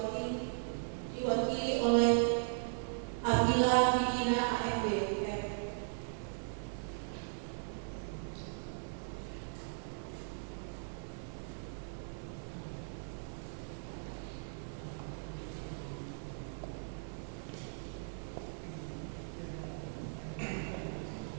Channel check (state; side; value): silent; left; 52 dB below the other